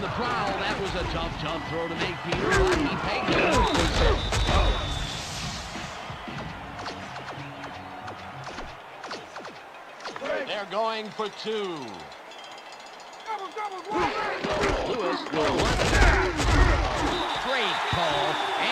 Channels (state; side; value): identical; both; correlation 1.00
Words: the prowl, that was a tough throw to make, Peter. He pegged it. They're going for two. Lewis will run. Great call,